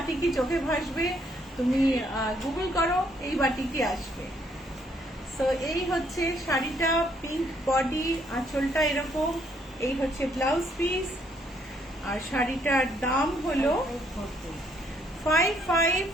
চোখে ভাসবে, তুমি গুগল করো, এই বাটিকই আসবে। সো এই হচ্ছে শাড়িটা, পিঙ্ক বডি, আঁচলটা এরকম, এই হচ্ছে ব্লাউজ পিস। আর শাড়িটার দাম হলো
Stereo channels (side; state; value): both; normal; correlation 0.69